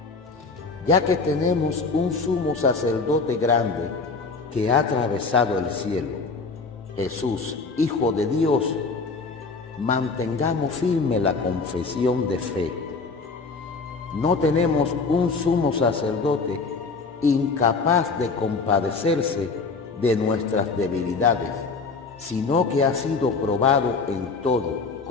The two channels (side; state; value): right; quieter; 4.3 dB